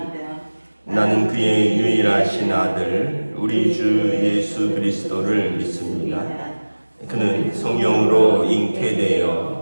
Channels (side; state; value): both; inverted; correlation -1.00